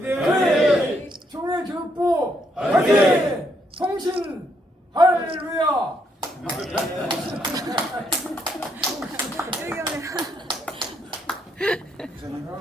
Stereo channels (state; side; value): normal; both; correlation 0.75